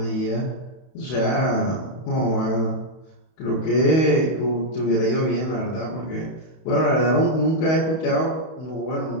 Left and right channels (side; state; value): right; late; 31 ms